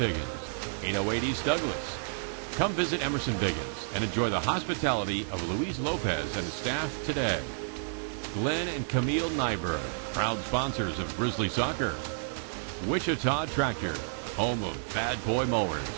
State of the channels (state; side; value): silent; left; digital silence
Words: 808 East Douglas. Come visit Emerson Biggins and enjoy the hospitality of Luis Lopez and his staff today. Glenn and Camille Nyberg, proud sponsors of Grizzly Soccer. Wichita Tractor, home of Bad Boy Mowers,